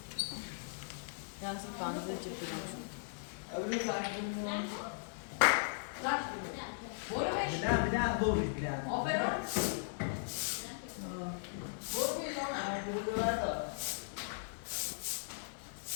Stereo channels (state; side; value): silent; right; digital silence